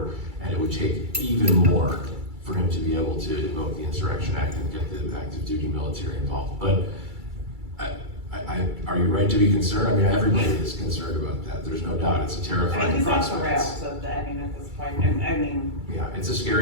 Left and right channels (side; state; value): left; late; 2.3 ms